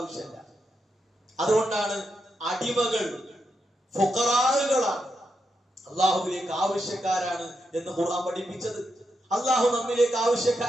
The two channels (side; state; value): both; normal; correlation 0.84